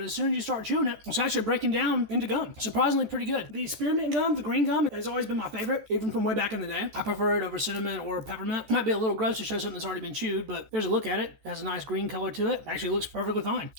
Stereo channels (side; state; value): left; late; 14 ms